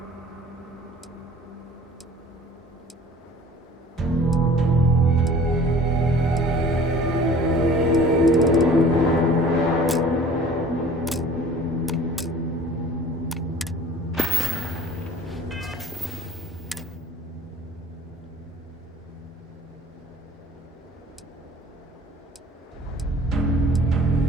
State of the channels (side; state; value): both; normal; correlation 0.47